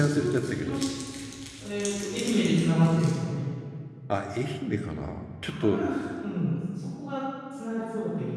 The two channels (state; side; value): identical; both; correlation 1.00